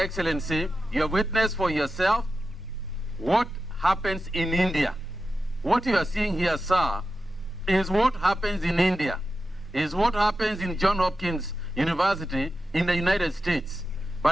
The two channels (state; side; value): normal; both; correlation 0.91